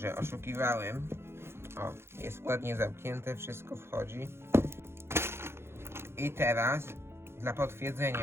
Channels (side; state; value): left; late; 0.12 ms